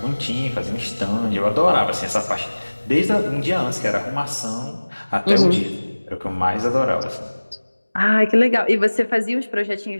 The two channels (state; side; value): inverted; both; correlation -1.00